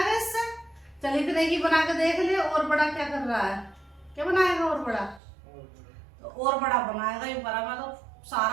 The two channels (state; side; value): drops out; left; at 5.2 s